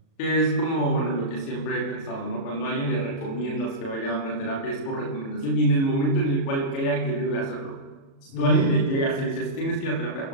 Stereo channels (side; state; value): right; late; 36 ms